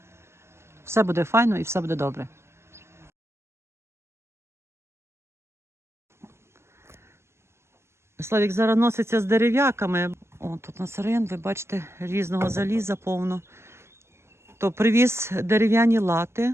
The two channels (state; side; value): late; left; 0.13 ms